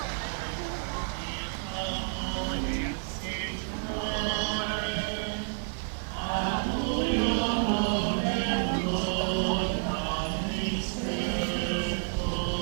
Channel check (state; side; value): silent; left; digital silence